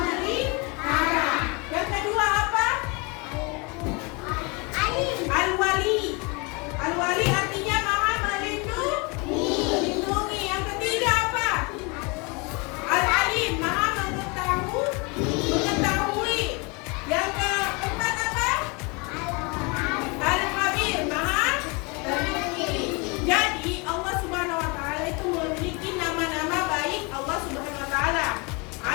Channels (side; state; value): right; quieter; 29.5 dB